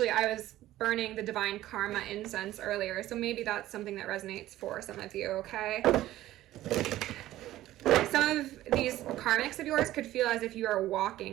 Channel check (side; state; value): left; quieter; 14.8 dB